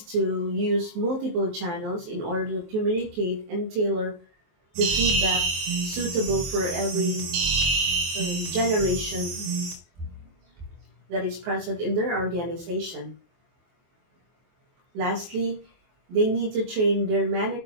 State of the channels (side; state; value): left; late; 24 ms